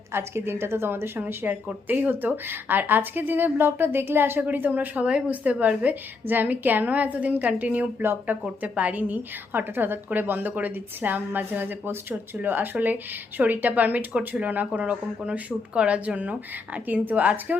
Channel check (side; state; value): right; quieter; 4.1 dB